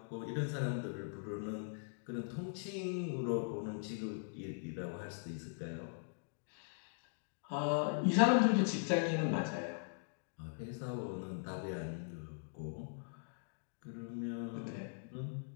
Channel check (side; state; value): right; silent; digital silence